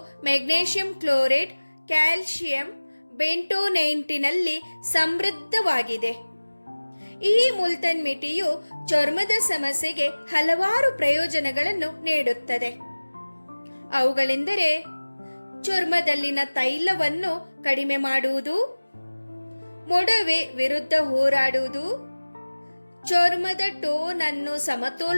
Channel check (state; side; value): inverted; both; correlation -1.00